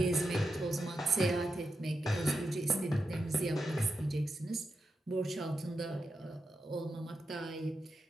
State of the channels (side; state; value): both; normal; correlation 0.87